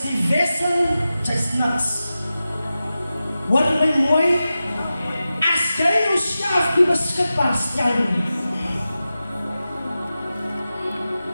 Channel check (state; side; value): inverted; both; correlation -0.93